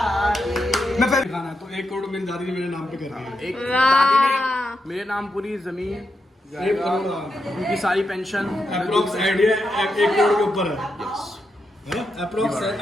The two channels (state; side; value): normal; both; correlation 0.85